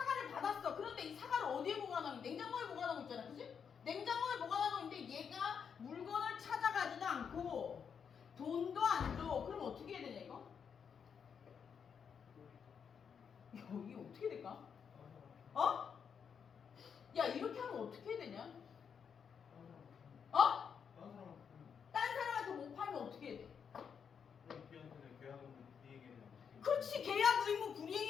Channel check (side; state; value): right; quieter; 7.0 dB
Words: 받았어. 그런데 이 사과를 어디에 보관하고? 냉장고에 보관하고 있잖아. 그지? 냉장고에 보관하고 있는데 얘가 물건을 찾아가지도 않고 돈도 안 줘. 그럼 어떻게 해야 되냐 이거? 이게 어떻게 될까? 야, 이렇게 하면 어떻게 해야 되냐? 딴 사람한테 못 팔면 어떻게 해야 돼? 그렇지. 계약 의무